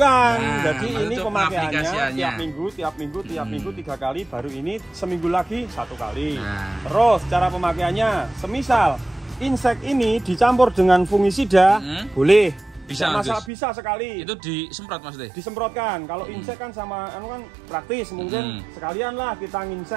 Jadi ini pemakaiannya tiap minggu 3 kali, baru ini seminggu lagi 1 kali. Terus cara pemakaiannya, semisal insek ini dicampur dengan fungisida, boleh. Bisa sekali. Itu disemprot Mas Teh? Disemprotkan. Kalau insek kan sama kan praktis, mungkin sekalian lah kita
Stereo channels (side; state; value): left; drops out; at 13.5 s